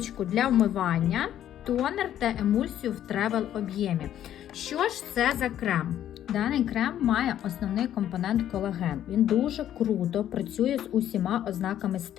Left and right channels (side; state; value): right; quieter; 11.2 dB